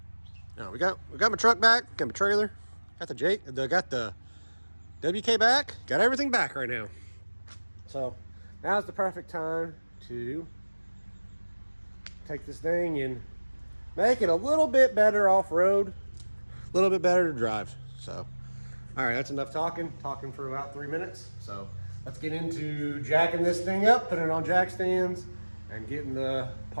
no, we got my truck back, got my trailer, got the WK back, got everything back right now. So now's the perfect time to take this thing and make it a little bit better off-road, a little bit better to drive. So all right, that's enough talking for about 3 minutes. So let's get into jacking this thing up, putting it on jack stands, and getting the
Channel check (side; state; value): both; inverted; correlation -1.00